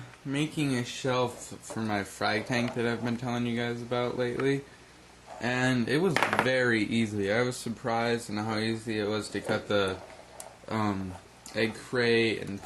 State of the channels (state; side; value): identical; both; correlation 1.00